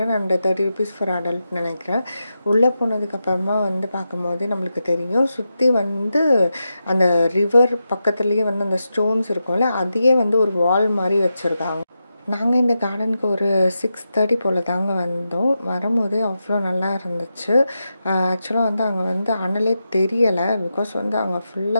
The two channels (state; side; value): inverted; both; correlation -0.89